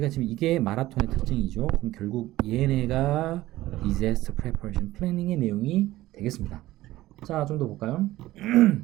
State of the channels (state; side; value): quieter; left; 16.4 dB